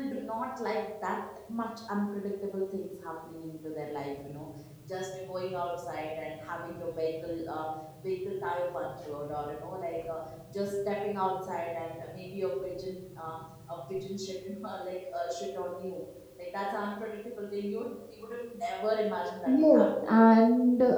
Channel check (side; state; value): both; identical; correlation 1.00